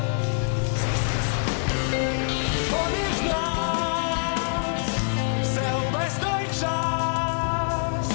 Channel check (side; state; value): right; silent; 62 dB below the other